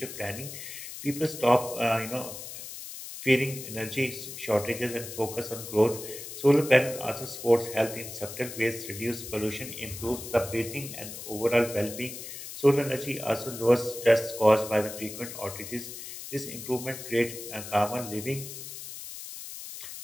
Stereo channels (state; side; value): noise; left; hiss, 10 dB below the sound